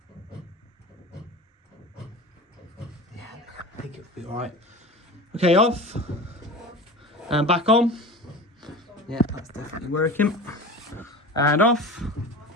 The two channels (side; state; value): both; normal; correlation 0.34